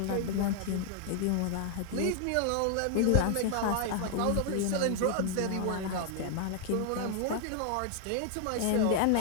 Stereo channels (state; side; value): different; both; correlation 0.00